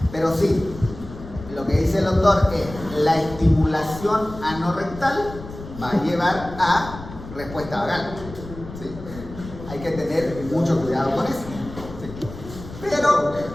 Pero sí, lo que dice el doctor es la estimulación anorrectal va a llevar a respuesta vagal. ¿Sí? Hay que tener mucho cuidado con eso. ¿Sí? Pero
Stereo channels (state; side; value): noise; left; rumble, 13 dB below the sound